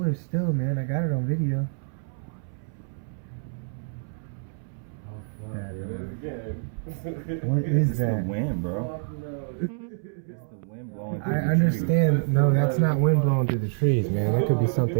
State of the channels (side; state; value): left; silent; 60 dB below the other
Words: still, man. I got it on video. Oh fuck! That Here it is again. What is It's that? the wind, bro. Fuck no. It's the wind blowing through I the understand. No, that's not wind blowing through the trees, man. That could be